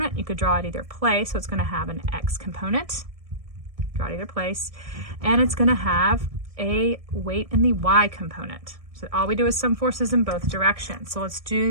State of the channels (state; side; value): late; left; 1.6 ms